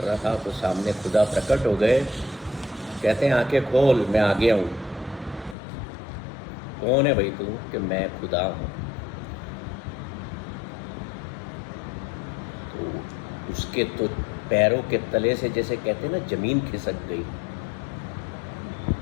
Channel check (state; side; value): drops out; right; at 5.6 s